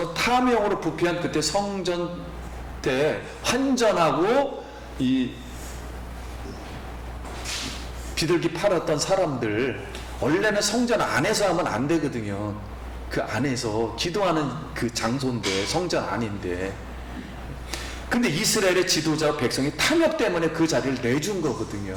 탐욕으로 부패한 그때 성전 때 환전하고 이 비둘기 팔았던 사람들, 원래는 성전 안에서 하면 안 되거든요. 그 안에서 기도하는 그 장소인데, 성전 안인데. 근데 이스라엘의 지도자 백성이 탐욕 때문에 그 자리를 내준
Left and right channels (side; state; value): both; identical; correlation 1.00